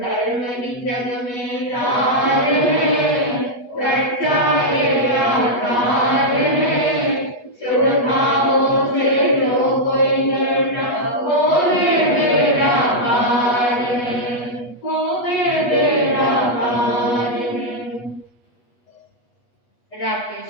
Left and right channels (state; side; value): late; right; 8.3 ms